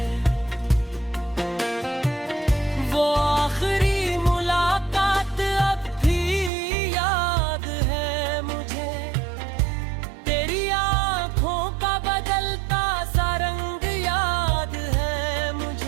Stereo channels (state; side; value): drops out; left; at 6.5 s